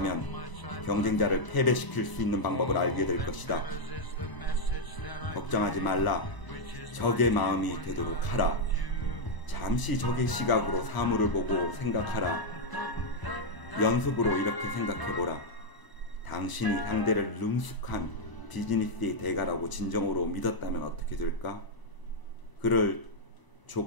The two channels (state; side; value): late; right; 1.0 ms